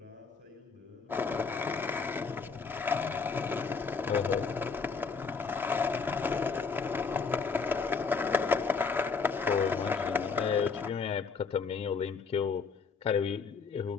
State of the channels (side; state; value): right; quieter; 5.1 dB